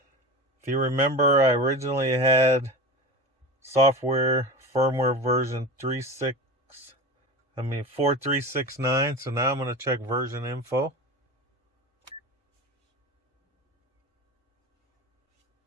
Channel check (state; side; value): normal; both; correlation 0.28